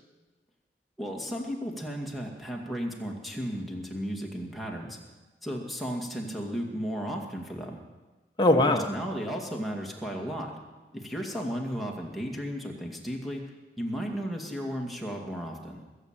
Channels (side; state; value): both; normal; correlation 0.63